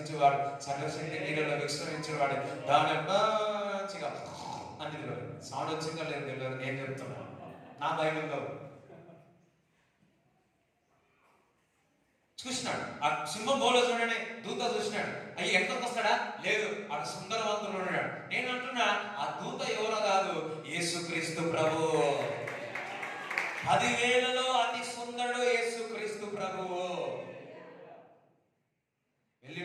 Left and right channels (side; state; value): both; identical; correlation 1.00